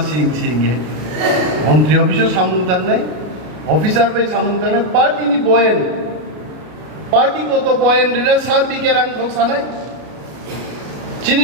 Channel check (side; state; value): left; late; 33 ms